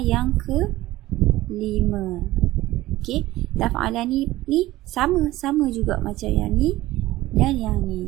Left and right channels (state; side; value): quieter; left; 16.9 dB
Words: yang ke-5. Okey, taf'alani ni sama juga macam yang ni dan yang ni.